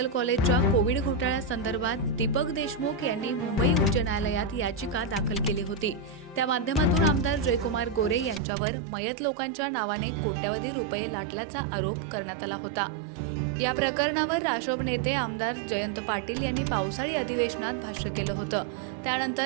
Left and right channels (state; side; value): drops out; left; at 8.4 s